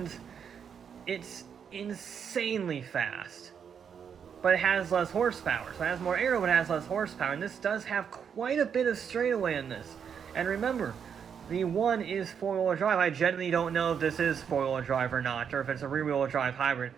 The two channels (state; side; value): quieter; left; 7.4 dB